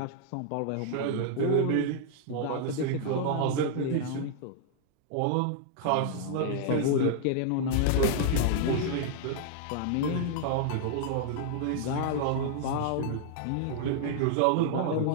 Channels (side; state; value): both; different; correlation -0.01